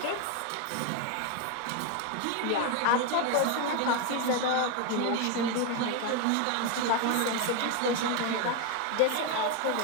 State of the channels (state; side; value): different; both; correlation 0.02